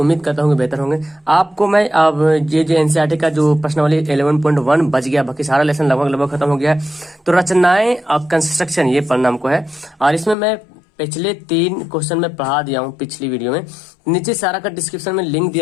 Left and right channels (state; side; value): drops out; right; at 10.4 s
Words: करता हूं कि बेहतर होंगे। आपको मैं अब ये जो एनसीईआरटी का जो प्रश्नावली 11.1 बच गया, बाकी सारा लेसन लगभग खत्म हो गया है। तो रचनाएं और कंस्ट्रक्शन ये पढ़ना हमको है, और इसमें मैं पिछले 3 क्वेश्चन में पढ़ा दिया हूँ पिछली वीडियो में। नीचे सारा का डिस्क्रिप्शन में लिंक